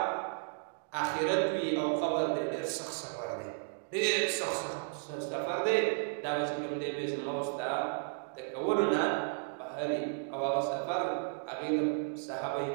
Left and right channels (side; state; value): left; silent; digital silence